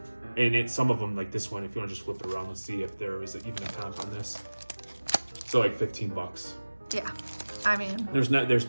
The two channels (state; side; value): inverted; both; correlation -1.00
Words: and some of them, like this one, if you want to just flip it around, let's see if there is even a comp on this. So like $15. Yeah, I mean, there's